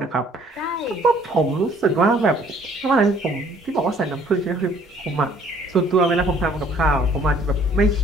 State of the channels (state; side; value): normal; both; correlation 0.59